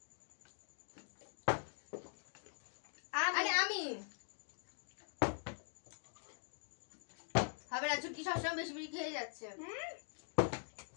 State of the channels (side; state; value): right; silent; digital silence